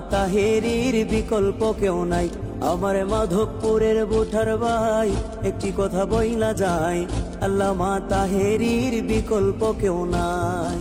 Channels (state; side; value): identical; both; correlation 1.00